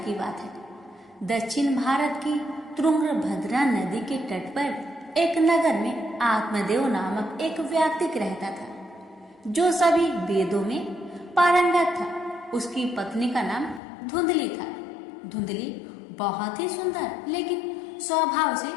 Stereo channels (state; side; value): drops out; right; at 13.8 s